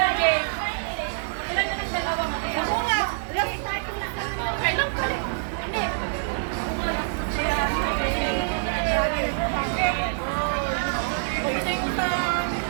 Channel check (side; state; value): left; silent; digital silence